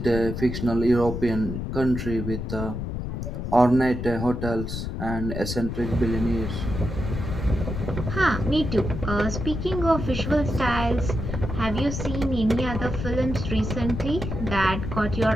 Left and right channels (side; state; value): left; noise; rumble, 5 dB below the sound